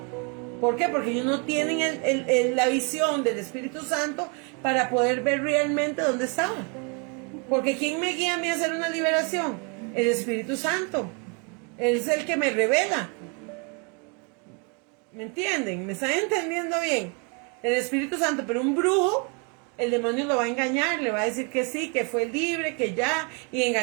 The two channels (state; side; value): quieter; left; 34.5 dB